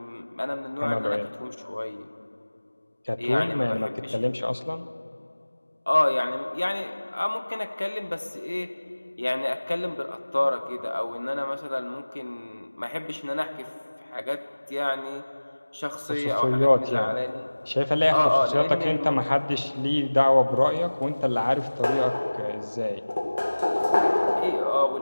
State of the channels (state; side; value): inverted; both; correlation -1.00